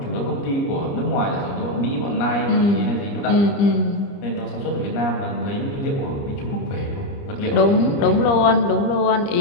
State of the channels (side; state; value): right; late; 29 ms